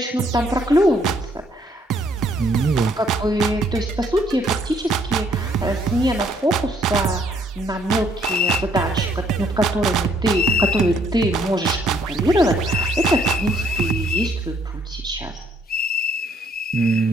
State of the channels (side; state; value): both; normal; correlation 0.66